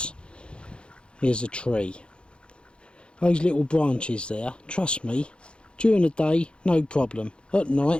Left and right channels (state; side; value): late; right; 0.055 ms